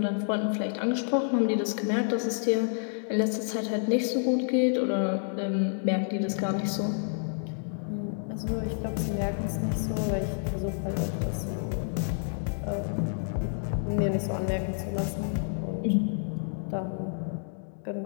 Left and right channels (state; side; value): silent; right; digital silence